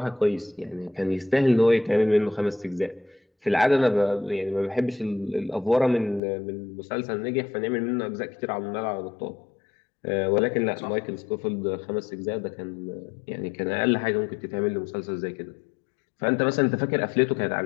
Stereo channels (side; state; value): right; drops out; at 6.2 s